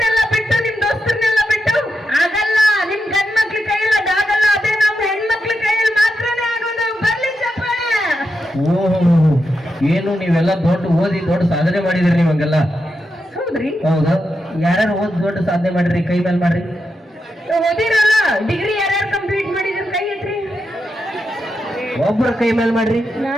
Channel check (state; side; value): normal; both; correlation 0.86